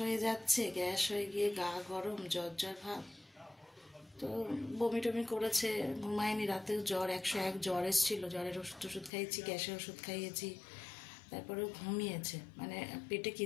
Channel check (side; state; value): right; drops out; at 9.1 s